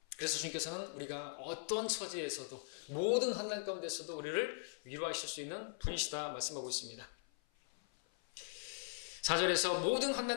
그래서 주님께서는 우리가 어떤 처지에서도 모든 환난 가운데서도 우리를 위로하실 수 있는 분이시다 말씀하고 있습니다. 4절에서 모든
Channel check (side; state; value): right; silent; 51 dB below the other